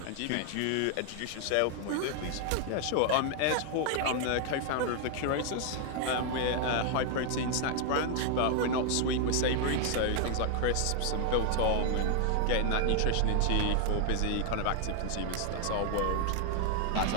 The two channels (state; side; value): different; both; correlation 0.00